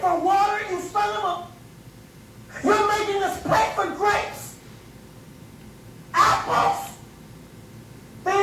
water instead of You're making us pay for grapes, apples,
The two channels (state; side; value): identical; both; correlation 1.00